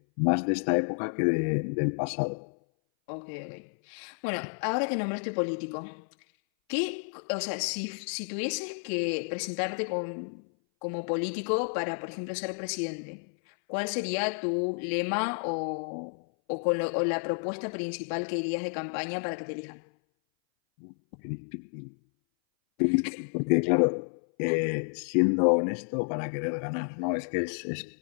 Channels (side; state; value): right; silent; 58 dB below the other